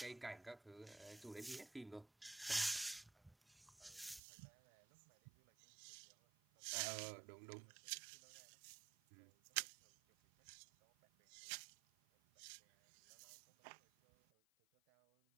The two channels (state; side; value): drops out; left; at 4.2 s